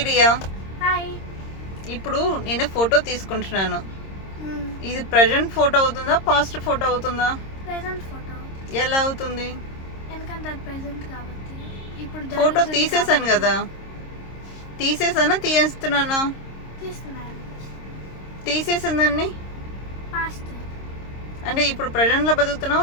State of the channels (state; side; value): late; right; 26 ms